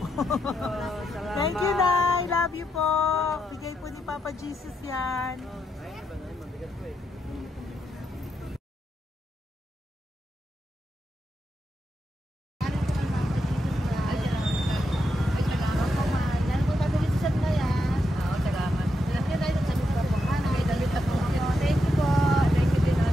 Salamat. Thank you, Nay. Love you po. Bigay po ni Papa Jesus yan. Mabigat po eh.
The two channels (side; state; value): both; normal; correlation 0.83